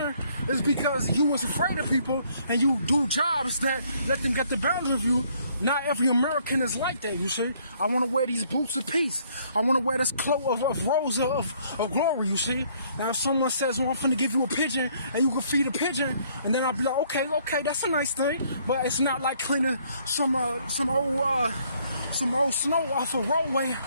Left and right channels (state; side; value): inverted; both; correlation -0.65